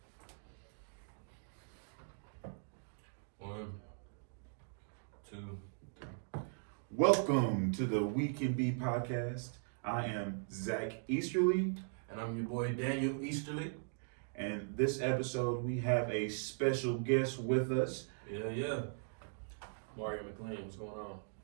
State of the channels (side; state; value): left; silent; digital silence